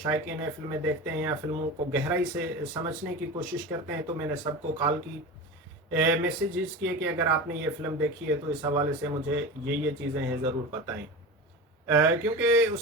हैं, फिल्में देखते हैं या फिल्मों को गहराई से समझने की कोशिश करते हैं, तो मैंने सबको कॉल की, मैसेजेस किए कि अगर आपने ये फिल्म देखी है तो इस हवाले से मुझे ये चीज़ें हैं ज़रूर बताएं। क्योंकि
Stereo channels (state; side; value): normal; both; correlation 0.28